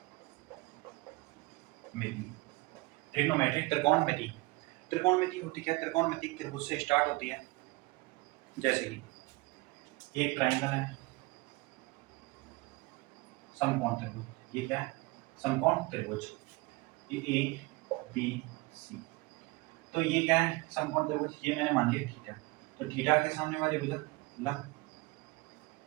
ट्रिग्नोमेट्री त्रिकोणमिति। त्रिकोणमिति होती क्या है? त्रिकोणमिति त्रिभुज से स्टार्ट होती है। जैसे कि ये एक ट्राइंगल है, समकोण त्रिभुज। ये क्या है? समकोण त्रिभुज। ये ए बी सी। तो ये क्या है? समकोण त्रिभुज। ये मैंने मान लिया थीटा। तो थीटा के सामने वाली भुजा लंब,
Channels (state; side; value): quieter; left; 23.4 dB